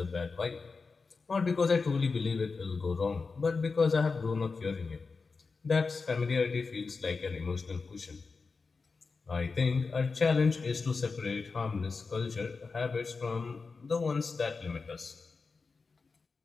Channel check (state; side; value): quieter; right; 4.5 dB